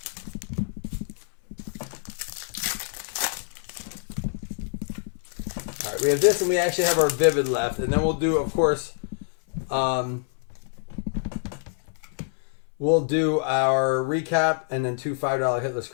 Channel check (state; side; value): silent; right; 61 dB below the other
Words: All right, we have this, and we actually have our Vivid left, and then we'll do, of course, we'll do our recap and then 2 $5 hitless